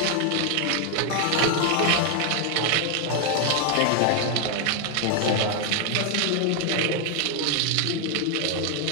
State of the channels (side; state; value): both; different; correlation 0.01